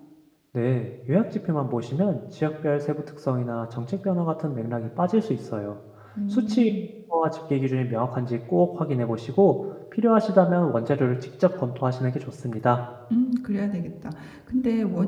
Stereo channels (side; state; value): both; identical; correlation 1.00